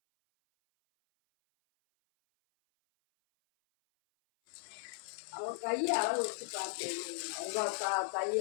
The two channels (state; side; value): silent; right; 53 dB below the other